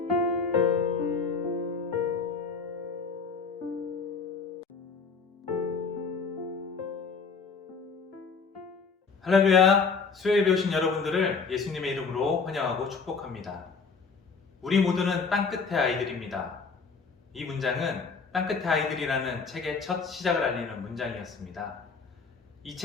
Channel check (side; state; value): right; quieter; 5.0 dB